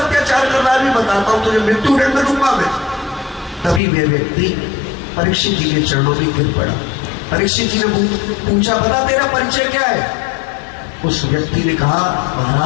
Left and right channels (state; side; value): drops out; right; at 3.8 s